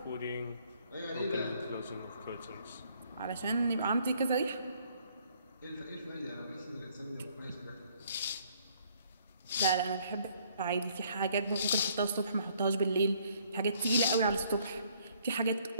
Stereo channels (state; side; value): inverted; both; correlation -0.64